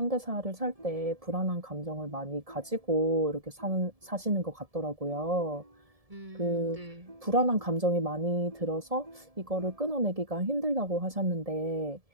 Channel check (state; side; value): late; left; 1.7 ms